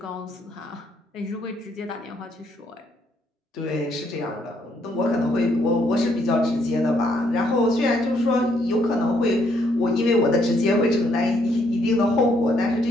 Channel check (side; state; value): both; normal; correlation 0.71